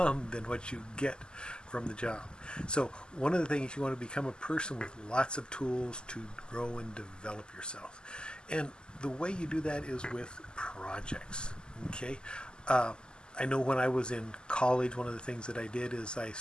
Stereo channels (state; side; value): late; right; 0.047 ms